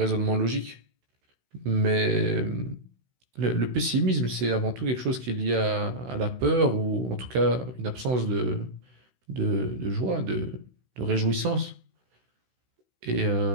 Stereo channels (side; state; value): left; late; 16 ms